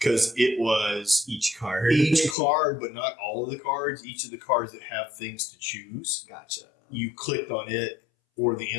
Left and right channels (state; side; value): drops out; right; at 2.4 s